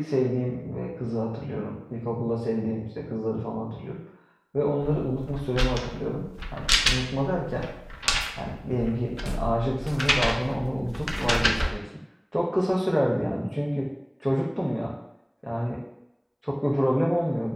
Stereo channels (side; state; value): both; identical; correlation 1.00